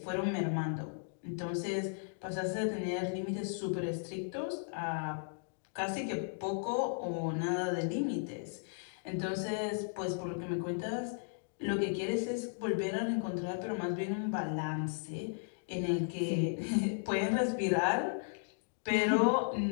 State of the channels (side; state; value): right; silent; digital silence